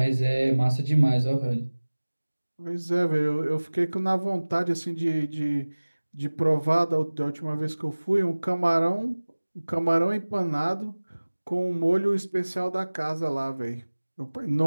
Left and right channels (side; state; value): both; inverted; correlation -1.00